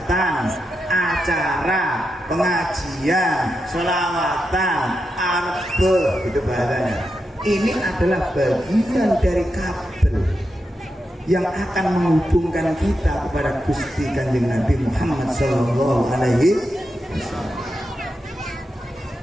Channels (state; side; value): normal; both; correlation 0.87